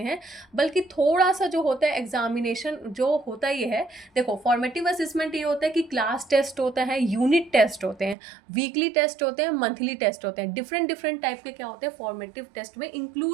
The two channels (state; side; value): drops out; left; at 8.2 s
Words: बल्कि थोड़ा सा जो होता है एग्जामिनेशन जो होता ही है। देखो फॉर्मेटिव असेसमेंट ये होता है कि क्लास टेस्ट होता है, यूनिट टेस्ट होते हैं, वीकली टेस्ट होते हैं, मंथली टेस्ट होते हैं, डिफरेंट डिफरेंट टाइप के क्या होते हैं फॉर्मेटिव टेस्ट में